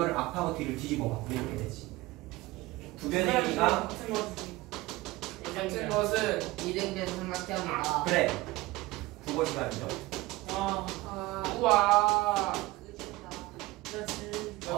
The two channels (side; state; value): left; quieter; 19.8 dB